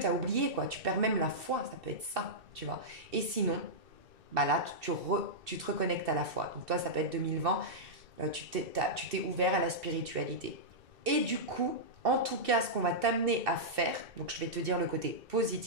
oublié, quoi. Tu perds même la foi, ça peut être ça, tu vois. Et sinon, bah là, tu te reconnectes à la foi. Donc toi, ça peut être 2020, tu t'es ouvert à la spiritualité. Et du coup, en tout cas, ce qu'on va t'amener à faire, donc je vais te dire le côté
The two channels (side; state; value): left; late; 2.6 ms